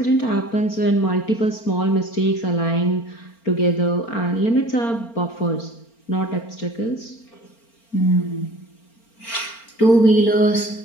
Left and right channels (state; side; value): late; right; 4.4 ms